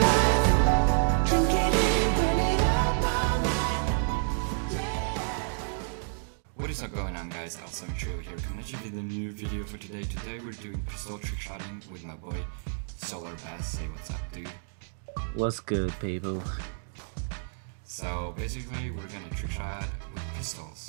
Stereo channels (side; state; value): left; silent; digital silence